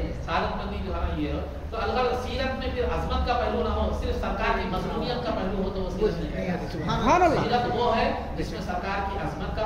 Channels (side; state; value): both; identical; correlation 1.00